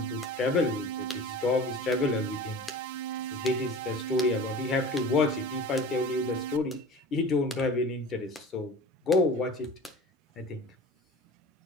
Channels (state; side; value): normal; both; correlation 0.37